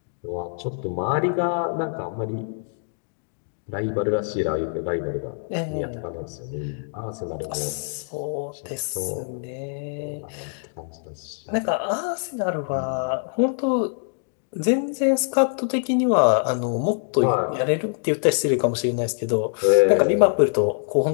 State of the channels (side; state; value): right; silent; digital silence